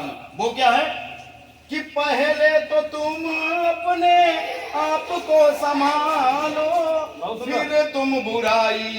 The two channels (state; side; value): identical; both; correlation 1.00